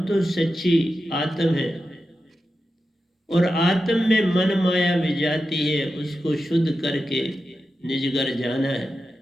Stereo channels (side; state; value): both; normal; correlation 0.90